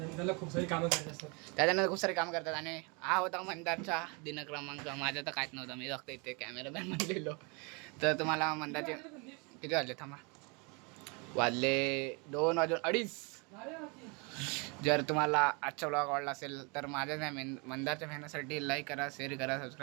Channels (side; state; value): left; quieter; 31.3 dB